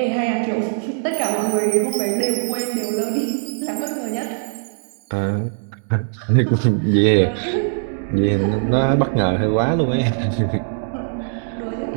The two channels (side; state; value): left; silent; digital silence